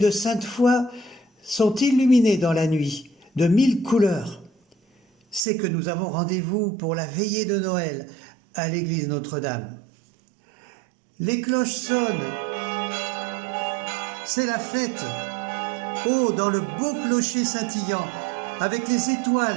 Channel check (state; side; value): drops out; left; at 5.5 s